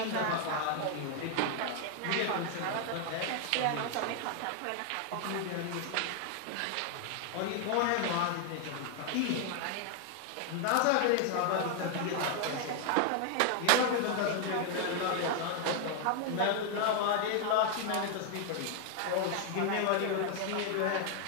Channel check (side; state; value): both; different; correlation 0.00